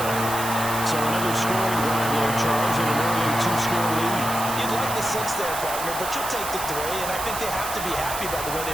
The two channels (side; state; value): right; noise; hiss, 7 dB below the sound